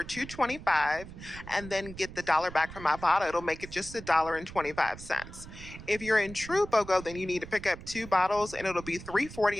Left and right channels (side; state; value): right; noise; rumble, 14 dB below the sound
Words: $2.25 and then get the $1 back from Ibotta. It'll make it just $1.25. If you're in true BOGO, then you need to pick up two bottles, and it'll be